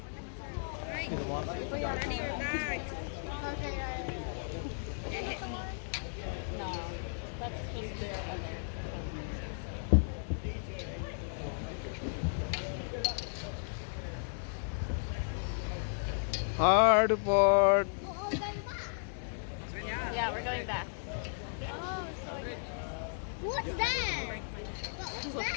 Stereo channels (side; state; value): right; silent; digital silence